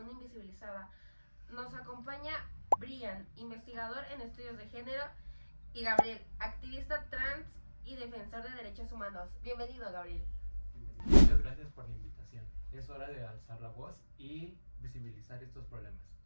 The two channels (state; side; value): inverted; both; correlation -1.00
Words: invisibilizada. Nos acompaña Brian, investigador en estudios de género, y Gabriel, activista trans y defensor de derechos humanos. Bienvenido, Gabriel. Muchas gracias por la invitación. Es hora de alzar la voz y visibilizar estos problemas.